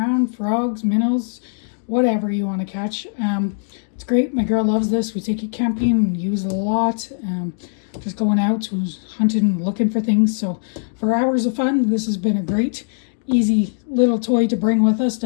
frogs, minnows, whatever you want to catch. It's great. My girl loves this. We take it camping and use it a lot. Just going out, hunting, looking for things. So for hours of fun, this has been a great, easy little toy to bring with us.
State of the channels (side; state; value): right; silent; digital silence